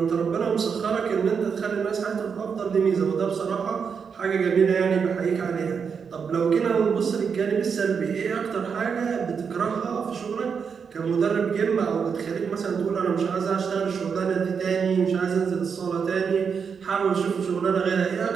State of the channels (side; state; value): left; quieter; 6.3 dB